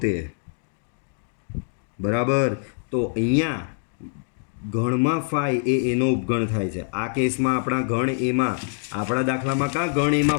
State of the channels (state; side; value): silent; right; digital silence